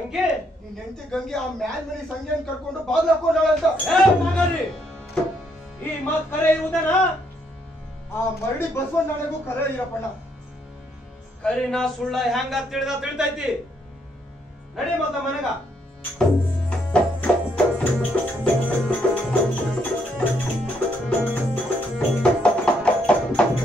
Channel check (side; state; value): both; normal; correlation 0.73